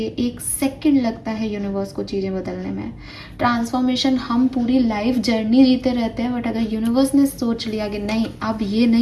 है। 1 सेकंड लगता है यूनिवर्स को चीज़ें बदलने में। ट्रांसफॉर्मेशन हम पूरी लाइफ जर्नी जीते रहते हैं, बट अगर यूनिवर्स ने सोच लिया कि नहीं अब ये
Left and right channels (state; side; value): identical; both; correlation 1.00